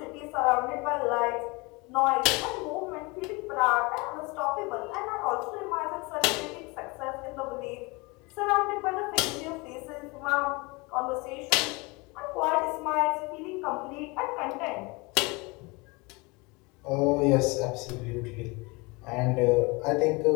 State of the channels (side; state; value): right; quieter; 26.3 dB